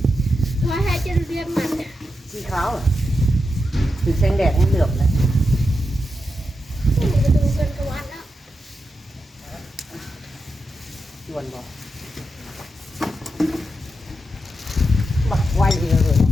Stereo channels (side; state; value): both; normal; correlation 0.87